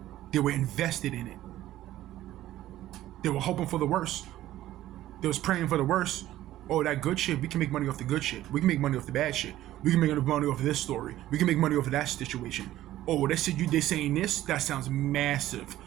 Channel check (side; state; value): left; quieter; 14.2 dB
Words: They were invested in it. They were hoping for the worst. They was praying for the worst. Oh, that good shit, we can make money off the good shit. We can make money off the bad shit. We can make money off of this story. We can make money off of that situation. Oh, they saying this? That sounds massive.